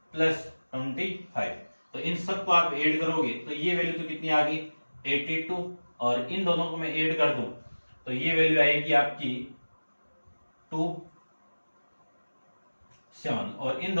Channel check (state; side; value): inverted; both; correlation -1.00